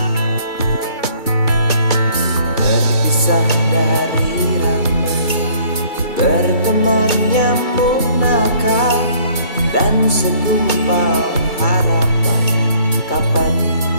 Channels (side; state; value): right; late; 2.3 ms